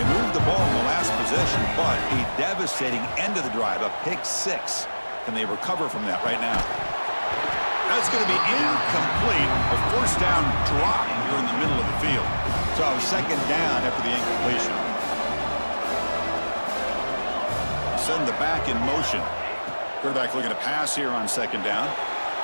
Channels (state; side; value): inverted; both; correlation -1.00